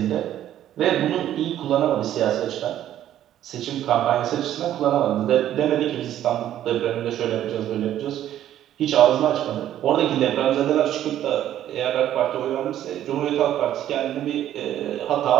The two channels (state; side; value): quieter; left; 11.8 dB